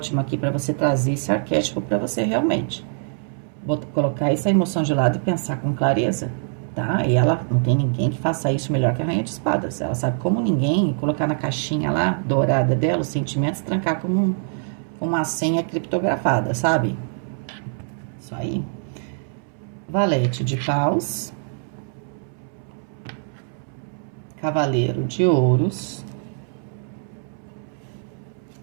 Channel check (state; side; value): silent; left; 63 dB below the other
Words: aqui para você trazer esse arquétipo para você realmente. Colocar essa emoção de lado e pensar com clareza, tá? E ela não tem ninguém que faça isso melhor que a rainha de espadas. Ela sabe como ninguém colocar na caixinha lá, dourada dela, os sentimentos, trancar como uma senha criptografada, sabe? Isso aí. Valete de paus. Cavaleiro de ouros.